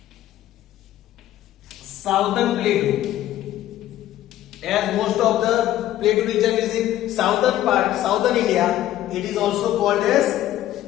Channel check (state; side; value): quieter; right; 13.3 dB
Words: Southern Plateau, as most of the plateau region is in southern part, southern India. It is also called as